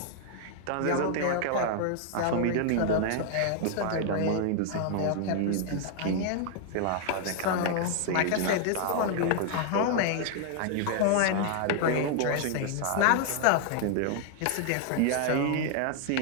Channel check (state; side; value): different; both; correlation 0.00